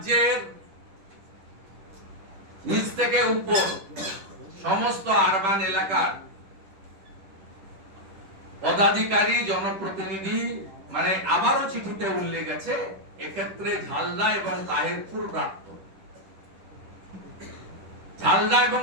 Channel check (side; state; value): left; late; 10 ms